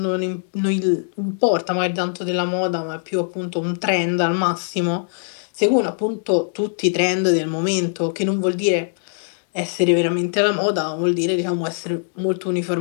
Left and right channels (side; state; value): right; silent; digital silence